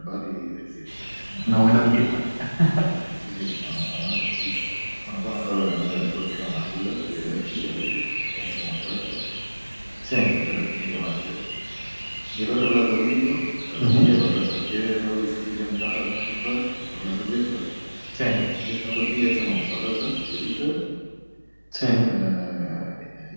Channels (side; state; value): both; inverted; correlation -1.00